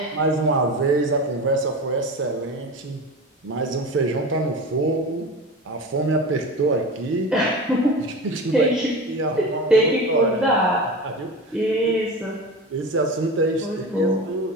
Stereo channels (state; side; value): normal; both; correlation 0.29